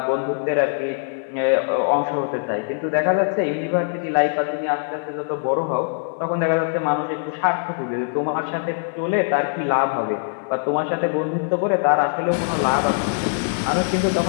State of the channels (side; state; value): right; silent; 56 dB below the other